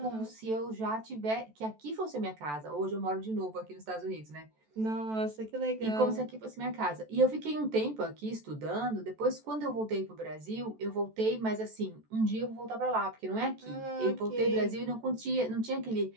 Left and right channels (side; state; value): left; late; 14 ms